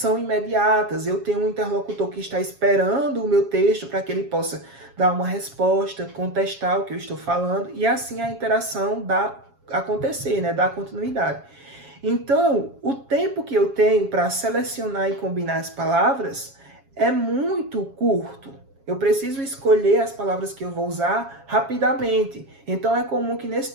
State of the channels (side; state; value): left; late; 7.3 ms